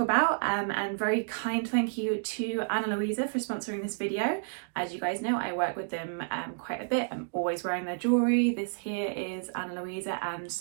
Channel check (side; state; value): left; silent; digital silence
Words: and very kind thank you to Ana Luisa for sponsoring this video. As you guys know, I work with them quite a bit. I'm always wearing their jewellery. This here is Ana Luisa, and